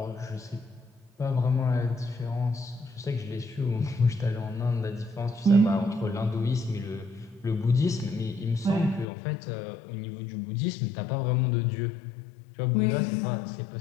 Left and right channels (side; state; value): right; drops out; at 9.1 s